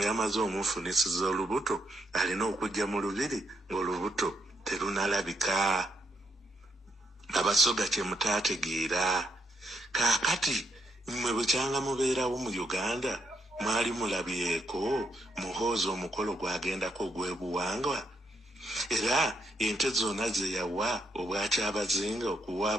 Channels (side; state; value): both; normal; correlation 0.77